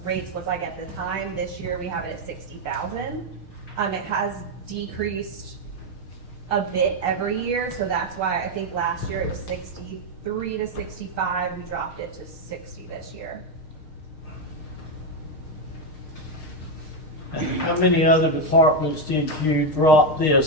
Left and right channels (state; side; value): late; right; 6.5 ms